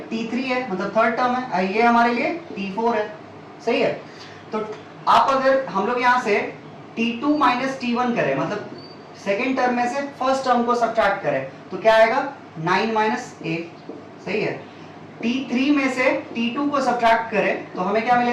T3 है, मतलब थर्ड टर्म है, ये हमारे लिए T4 है, सही है। तो आप अगर हम लोग यहाँ से T2 माइनस T1 करें, मतलब सेकेंड टर्म में से फर्स्ट टर्म को सब्ट्रैक्ट करें, तो क्या आएगा, 9 माइनस A, सही है। T3 में से T2 को सब्ट्रैक्ट करें तो हमें क्या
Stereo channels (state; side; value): identical; both; correlation 1.00